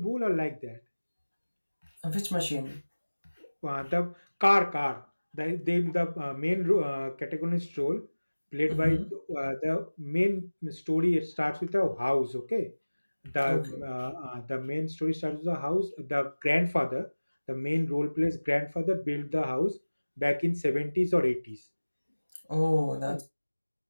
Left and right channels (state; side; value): inverted; both; correlation -1.00